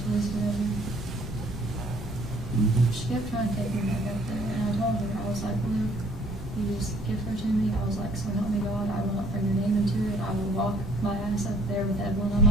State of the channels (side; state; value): both; normal; correlation 0.59